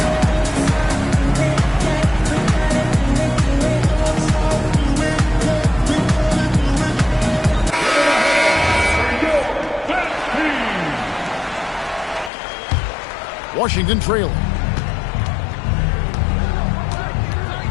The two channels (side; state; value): right; drops out; at 12.3 s